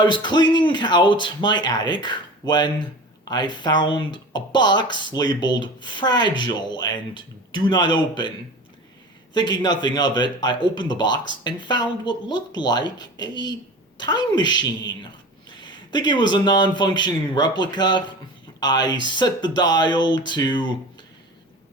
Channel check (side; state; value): both; normal; correlation 0.36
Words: was cleaning out my attic when I found a box labeled fragile and do not open. Thinking nothing of it, I opened the box and found what looked like a time machine. Thinking it was a non-functioning replica, I set the dial to